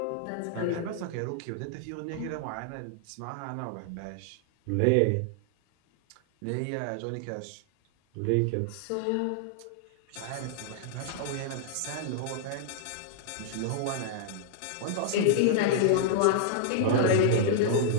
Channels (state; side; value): different; both; correlation -0.01